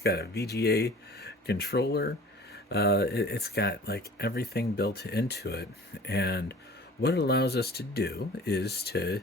a VGA controller. It's got like everything built into it, and what it allows us to do is to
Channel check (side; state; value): both; normal; correlation 0.45